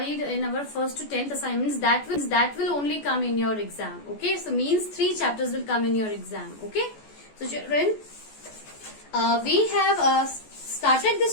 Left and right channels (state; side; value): late; right; 14 ms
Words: in our first to 10th assignments that will only come in your exam. Okay. So, means 3 chapters will come in your exam. Okay. So, children, we have started